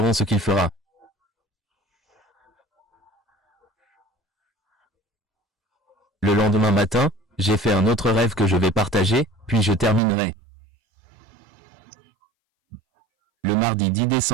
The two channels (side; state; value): left; drops out; at 10.0 s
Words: ce qu'il fera. Le lendemain matin, j'ai fait un autre rêve que je vais partager, puis je terminerai. Le mardi 10